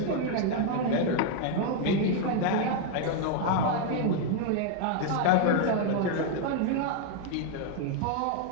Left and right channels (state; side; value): different; both; correlation 0.00